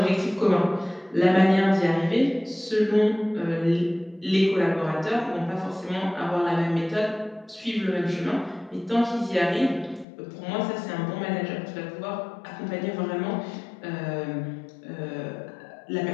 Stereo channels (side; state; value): right; drops out; at 10.1 s